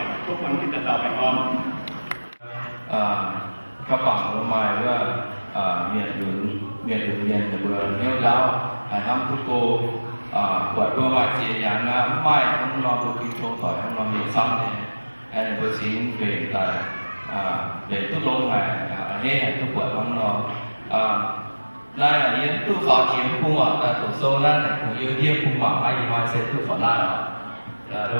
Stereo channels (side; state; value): both; inverted; correlation -1.00